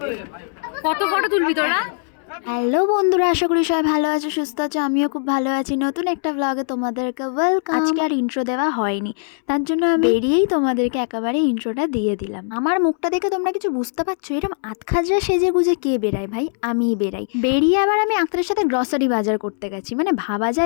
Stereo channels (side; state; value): right; silent; 65 dB below the other